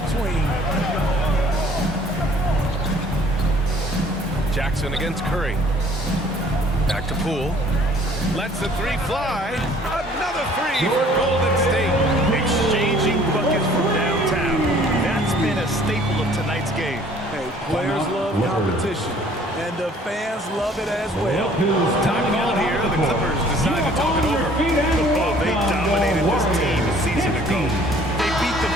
Jackson against Curry. Back to Poole. Lets the 3 fly. Another 3 for Golden State. Exchanging buckets from downtown. That's been a staple of tonight's game. Hey, players love competition, and the fans love it as well. Time call here. The Clippers decide to talk it over. Oh, they dominated this team a season ago. They beat them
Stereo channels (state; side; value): normal; both; correlation 0.55